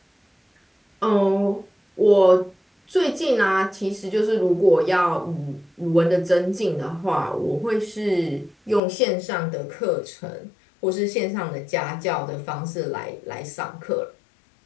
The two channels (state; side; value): drops out; right; at 8.8 s